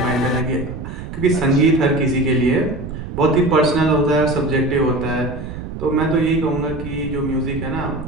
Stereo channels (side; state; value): right; noise; rumble, 9 dB below the sound